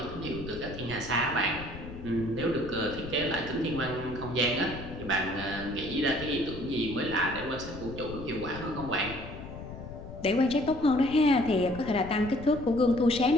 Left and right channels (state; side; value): noise; left; rumble, 12 dB below the sound